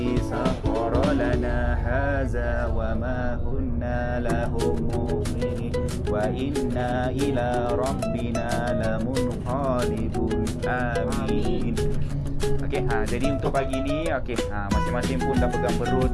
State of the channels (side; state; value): both; identical; correlation 1.00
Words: sakhkhara lana hadza wa ma kunna lahu muqrinin wa inna ila rabbina lamunqalibun. Amin. Okey, jadi untuk pagi ni masing-masing pun dah pegang perut.